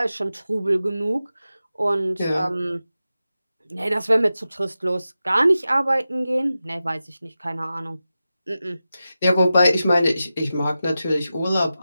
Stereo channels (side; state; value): both; inverted; correlation -0.92